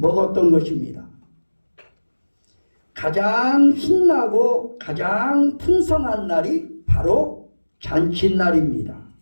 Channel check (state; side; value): inverted; both; correlation -1.00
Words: 것입니다. 가장 신나고 가장 풍성한 날이 바로 잔칫날입니다.